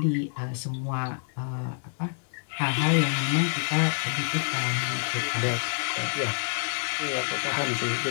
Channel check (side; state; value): right; silent; digital silence